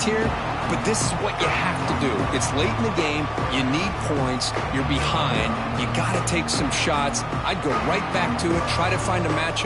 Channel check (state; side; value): identical; both; correlation 1.00